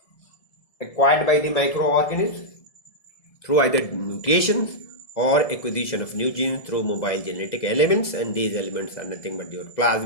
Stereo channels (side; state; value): right; late; 1.7 ms